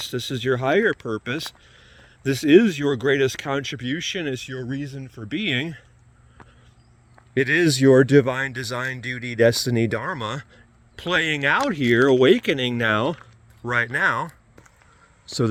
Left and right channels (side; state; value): both; identical; correlation 1.00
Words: This is your higher purpose. This is your greatest contribution. It's your reason for being. It is your divine design, duty, destiny, dharma playing out here, awakening now, right now. So